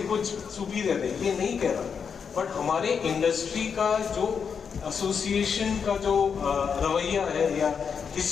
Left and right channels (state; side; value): quieter; right; 6.5 dB